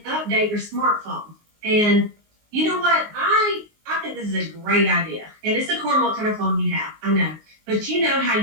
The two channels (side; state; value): left; late; 19 ms